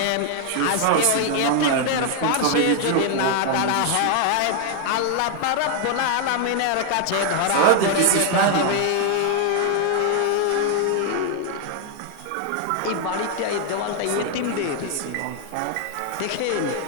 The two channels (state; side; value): different; both; correlation 0.00